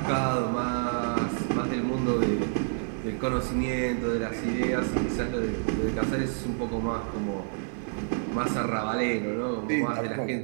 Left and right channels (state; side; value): silent; left; digital silence